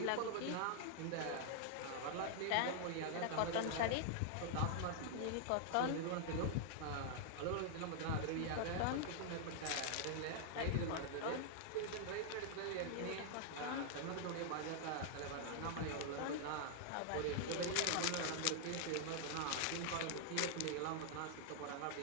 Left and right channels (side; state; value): both; different; correlation -0.01